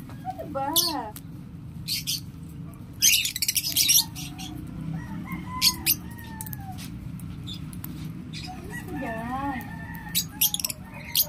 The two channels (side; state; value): both; identical; correlation 1.00